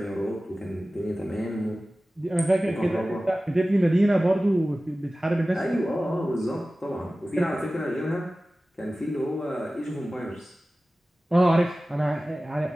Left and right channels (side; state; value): both; normal; correlation 0.96